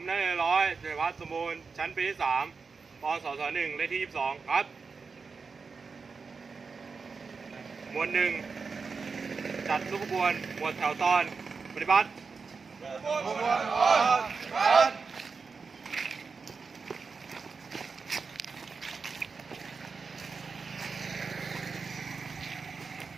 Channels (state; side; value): quieter; left; 4.9 dB